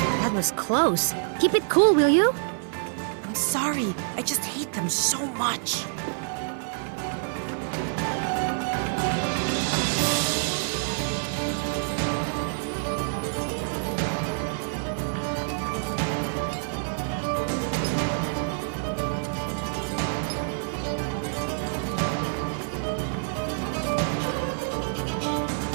That was close. Keep it cool, will you? I'm sorry. I just hate them so much.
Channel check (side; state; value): left; silent; 60 dB below the other